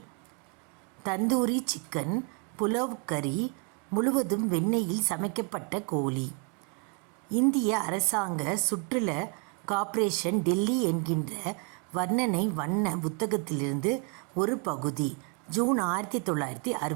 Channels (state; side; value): quieter; left; 35.0 dB